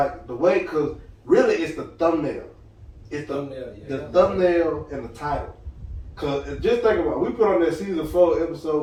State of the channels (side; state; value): both; identical; correlation 1.00